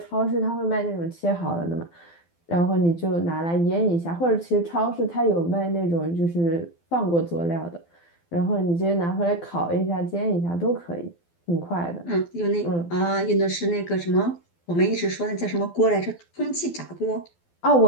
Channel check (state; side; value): late; right; 12 ms